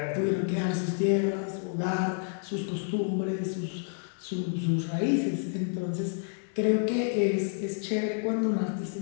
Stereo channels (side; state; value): right; silent; digital silence